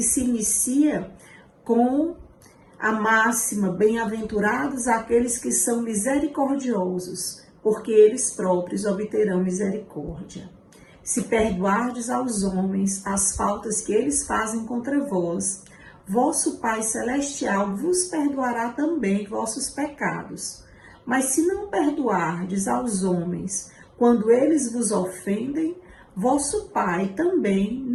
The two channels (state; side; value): identical; both; correlation 1.00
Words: se inicia com a máxima: bem-aventurados aqueles que são misericordiosos, porque eles próprios obterão misericórdia. Se perdoardes aos homens as faltas que eles fazem contra vós, vosso Pai Celestial vos perdoará também vossos pecados. Mas se não perdoardes aos homens quando eles vos ofendem, vosso Pai também